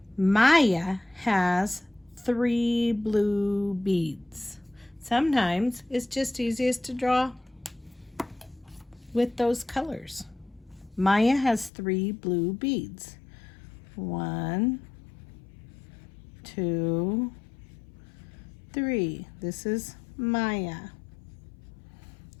Maya has 3 blue beads. Sometimes it's just easiest to draw with those colors. Maya has 3 blue beads. 1, 2, 3. This is Maya.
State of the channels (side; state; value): right; drops out; at 11.7 s